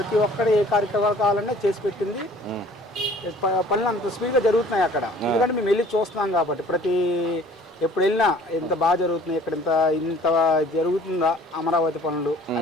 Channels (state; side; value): normal; both; correlation 0.52